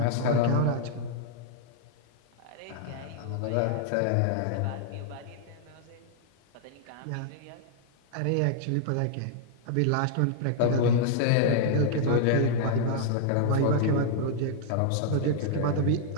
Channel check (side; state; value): both; different; correlation -0.01